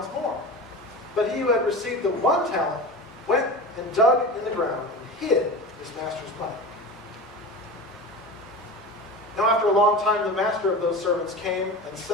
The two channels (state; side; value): normal; both; correlation 0.30